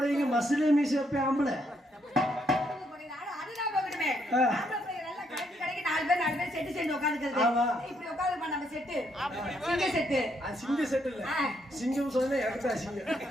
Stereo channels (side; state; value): both; normal; correlation 0.74